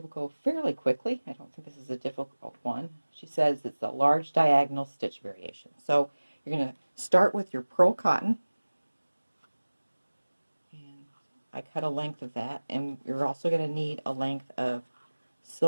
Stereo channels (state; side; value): inverted; both; correlation -1.00